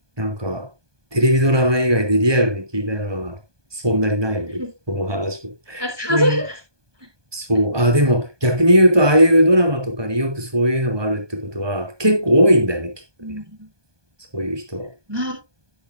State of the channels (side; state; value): left; late; 1.2 ms